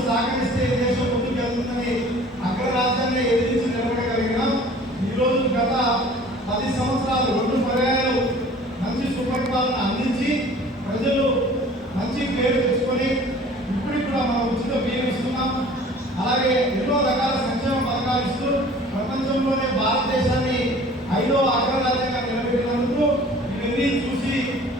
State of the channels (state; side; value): normal; both; correlation 0.48